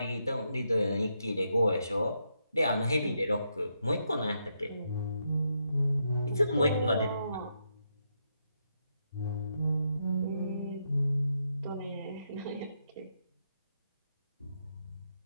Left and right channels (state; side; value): inverted; both; correlation -0.80